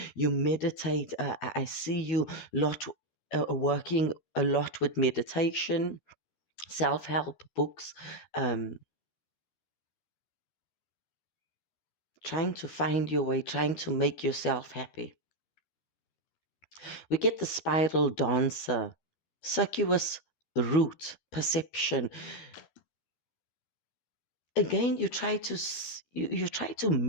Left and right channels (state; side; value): late; right; 12 ms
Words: You meditate. I see you lot working a lot with meditation, self-help books, trying to find your way, trying to make yourself happy. We get the spiral dancer, circuitous route, perception. Again, you try to